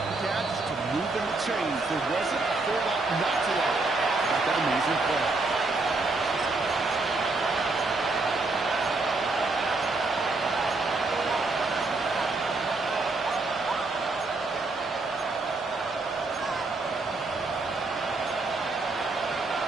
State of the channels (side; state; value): left; quieter; 3.4 dB